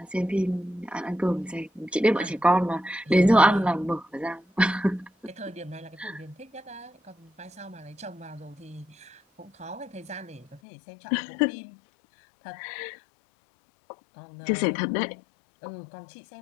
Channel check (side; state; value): right; drops out; at 10.6 s